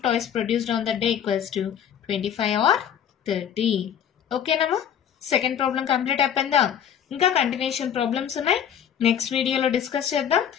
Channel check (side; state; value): right; quieter; 9.1 dB